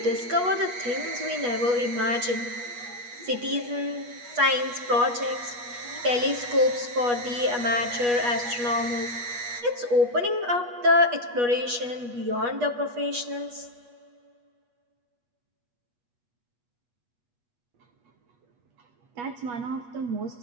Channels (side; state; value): left; late; 8.3 ms